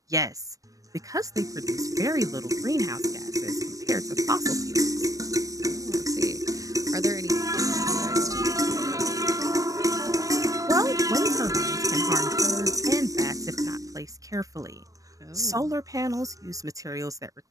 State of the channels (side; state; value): left; late; 0.16 ms